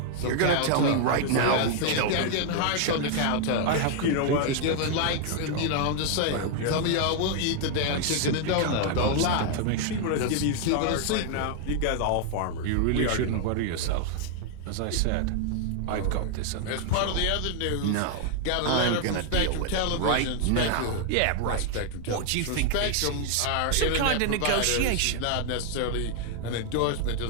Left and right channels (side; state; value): both; different; correlation 0.00